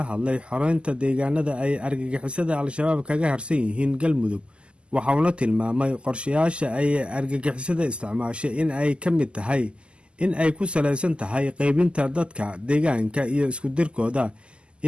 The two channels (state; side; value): late; left; 0.051 ms